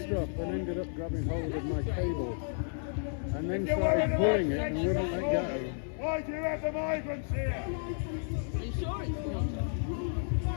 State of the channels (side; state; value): right; silent; digital silence